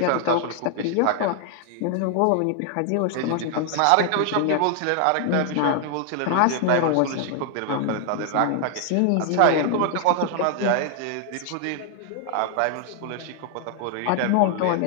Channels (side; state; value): both; different; correlation 0.00